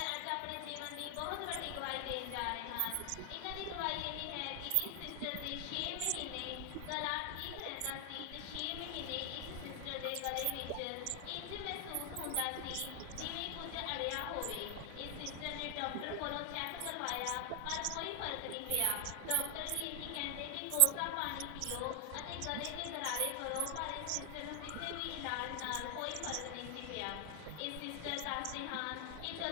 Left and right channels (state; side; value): different; both; correlation 0.00